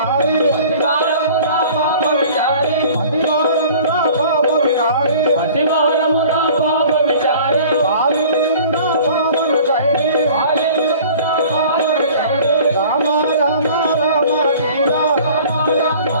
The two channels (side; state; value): both; inverted; correlation -0.47